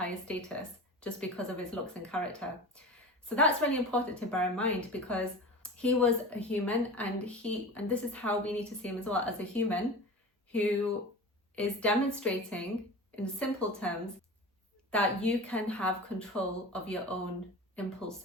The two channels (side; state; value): both; normal; correlation 0.32